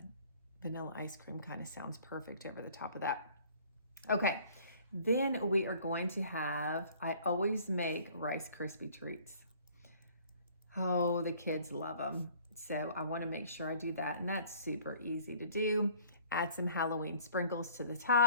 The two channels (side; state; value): both; inverted; correlation -0.54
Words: vanilla ice cream kind of sounds perfect over the top of that. Okay, then we are going to I always make Rice Krispie treats. Oh, the kids love them. So I want to make sure I do that, and that's super easy to do. Add some Halloween sprinkles to the